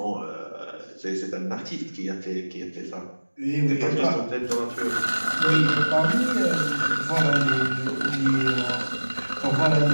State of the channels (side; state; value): both; inverted; correlation -1.00